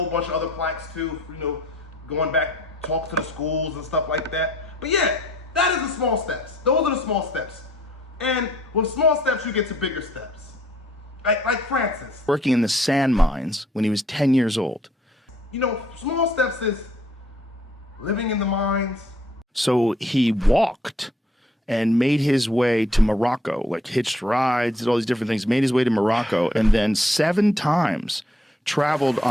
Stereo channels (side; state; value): both; normal; correlation 0.63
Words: bunch of other plaques too, going back, talks to the schools and stuff like that. But yeah, that is the small steps. Those are the small steps. And with small steps, you get to bigger steps. Like Francis. Working in the sand mines when he was 10 years old. Small steps is living in the mines. So he walked and made his way to Morocco, like hitched rides, did all these different things, made his way to Morocco, and then 7 times traveled